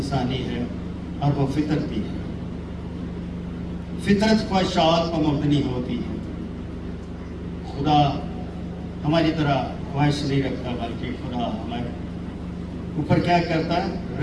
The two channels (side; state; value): both; identical; correlation 1.00